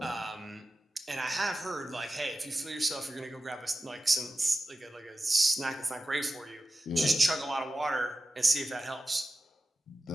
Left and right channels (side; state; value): both; normal; correlation 0.93